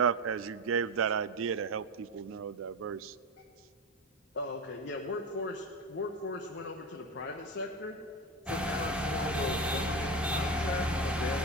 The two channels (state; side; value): normal; both; correlation 0.20